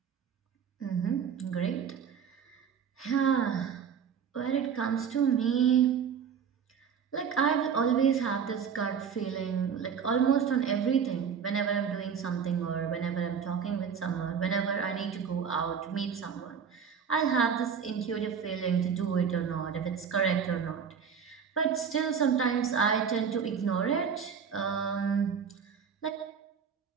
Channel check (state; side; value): quieter; left; 7.0 dB